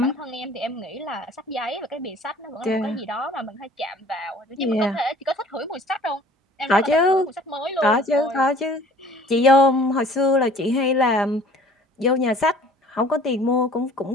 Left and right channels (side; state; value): both; normal; correlation 0.50